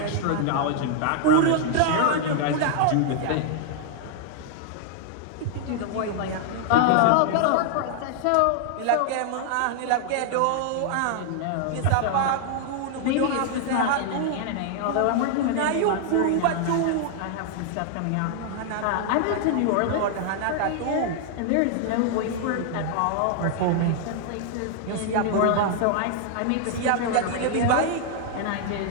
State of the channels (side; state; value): both; different; correlation 0.00